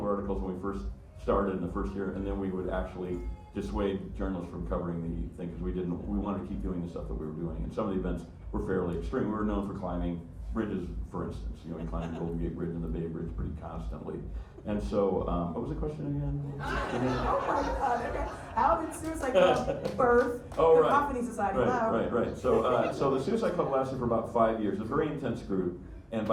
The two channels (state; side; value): identical; both; correlation 1.00